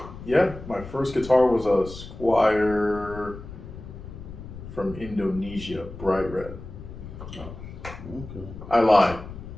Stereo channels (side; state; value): left; noise; rumble, 13 dB below the sound